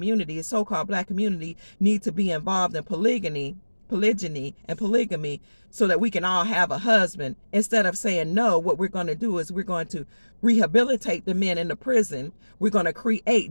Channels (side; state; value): both; inverted; correlation -1.00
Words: the so-called black community, need to be involved in polygyny and polygamy so that we can all have a husband. Instead of saying no, what we're going to do is we're going to rehabilitate the men in the prison. We're going to